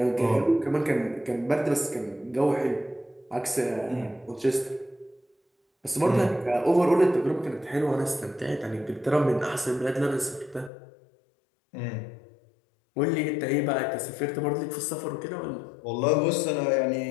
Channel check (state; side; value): drops out; right; at 10.7 s